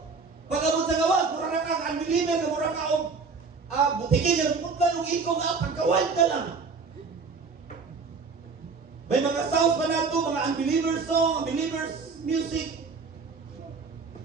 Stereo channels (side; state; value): left; quieter; 4.7 dB